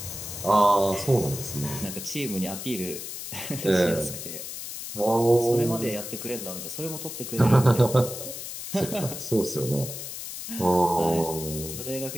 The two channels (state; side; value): noise; left; hiss, 8 dB below the sound